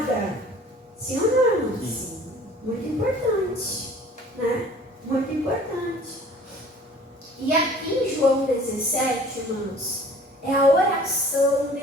Sim ou não? Sim. Muito importante, né? Muito importante. E aqui em João 17, irmãos, é a oração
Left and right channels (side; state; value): both; normal; correlation 0.49